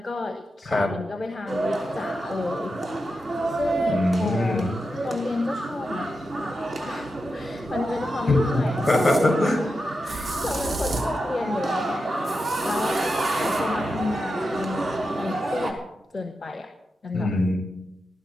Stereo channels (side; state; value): both; normal; correlation 0.89